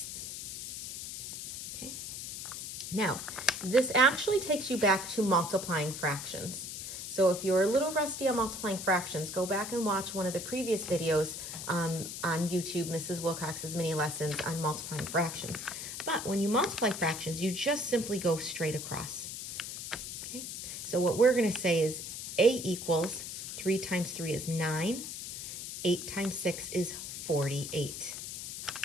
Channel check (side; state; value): left; noise; hiss, 7 dB below the sound